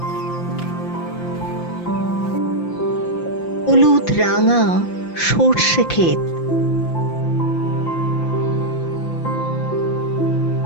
হলুদ রাঙা সর্ষে ক্ষেত,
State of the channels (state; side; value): late; right; 5.8 ms